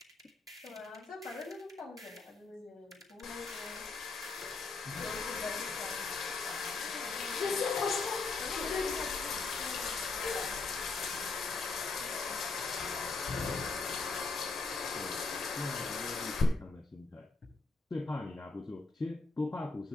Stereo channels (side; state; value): right; quieter; 4.1 dB